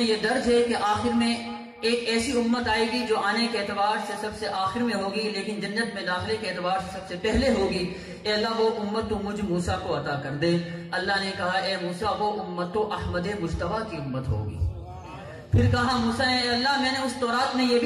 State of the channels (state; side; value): identical; both; correlation 1.00